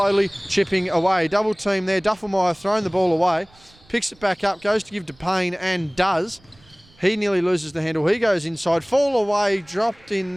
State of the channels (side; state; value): right; noise; rumble, 29 dB below the sound